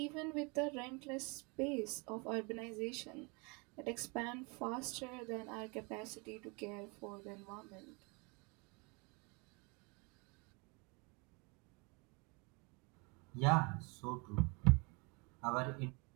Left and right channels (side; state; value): left; quieter; 30.4 dB